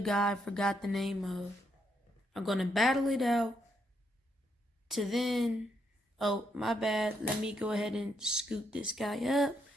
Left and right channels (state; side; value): normal; both; correlation 0.76